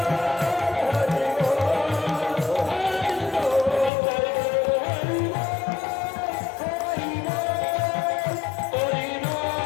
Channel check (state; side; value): drops out; right; at 3.9 s